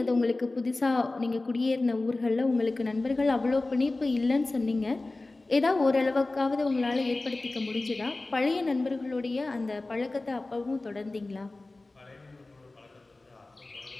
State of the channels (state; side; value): quieter; right; 3.1 dB